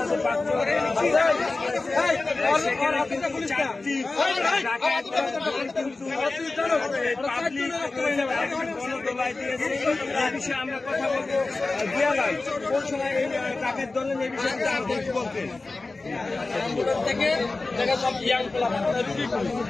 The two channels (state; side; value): quieter; right; 3.4 dB